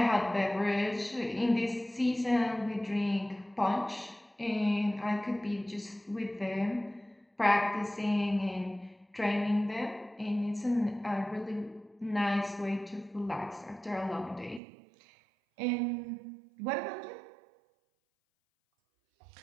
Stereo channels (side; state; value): left; drops out; at 14.6 s